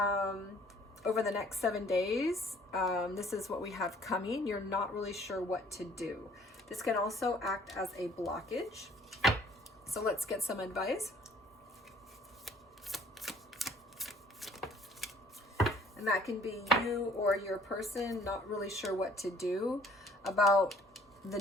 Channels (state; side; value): normal; both; correlation 0.57